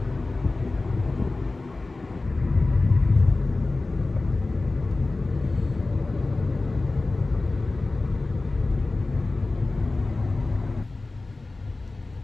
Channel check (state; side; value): quieter; right; 3.3 dB